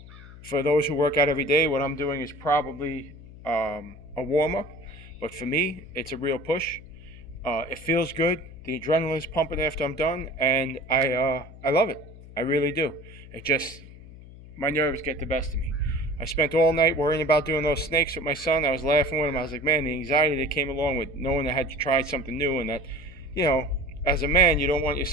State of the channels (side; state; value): left; noise; hum, 18 dB below the sound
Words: those who work out every day, what I'm doing is probably a warm-up. But for me, it's a real push. It feels good. The adrenaline is pumping after I'm done, and I love it. I really do. My nerves get the best of me. I spent all night worrying about doing those snakes with my son. I was laughing with him. I was like, man, the anxiety that came along with knowing I had to try something new, and that, as a man, you don't want your